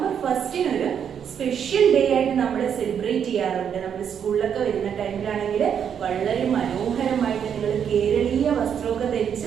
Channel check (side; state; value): left; quieter; 8.1 dB